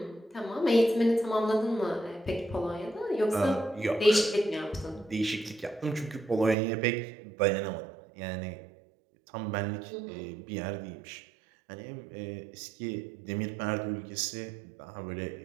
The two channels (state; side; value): drops out; left; at 6.6 s